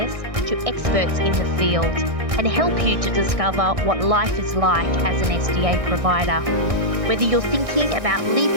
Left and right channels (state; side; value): late; left; 1.6 ms